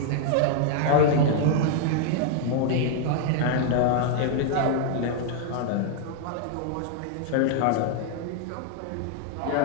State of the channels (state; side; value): different; both; correlation 0.00